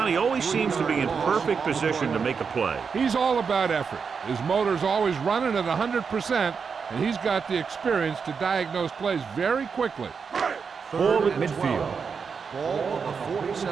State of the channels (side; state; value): left; quieter; 5.8 dB